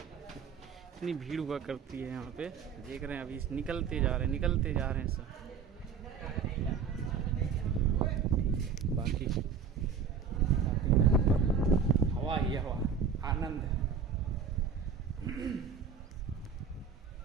इतनी भीड़ हुआ करती है यहाँ पे, देख रहे हैं अभी निकलते जा रहे हैं सब। बाकी हवा ही हवा, आनंद है।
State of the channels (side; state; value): left; quieter; 6.3 dB